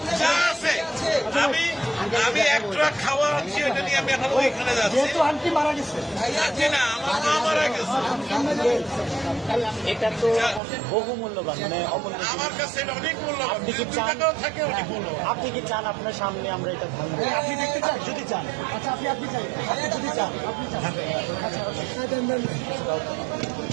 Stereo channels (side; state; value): left; drops out; at 10.6 s